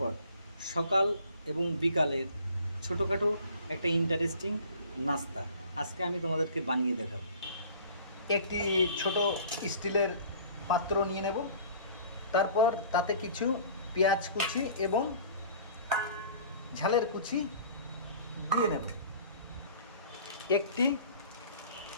সকাল এবং বিকালের ছোটোখাটো একটা ইন্টারেস্টিং নাস্তা আজকে আমি তোমাদেরকে বানিয়ে দেখাবো। একটি ছোট স্টিলের পাত্র নিয়ে নেব, তারপর তাতে কিছু পেঁয়াজ কুচি এবং ঝালের কুচি দিয়ে নেব, একটি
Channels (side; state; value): both; inverted; correlation -0.48